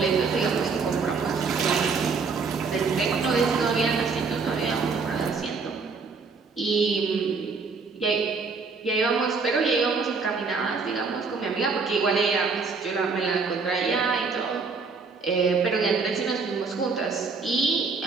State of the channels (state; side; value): quieter; left; 4.7 dB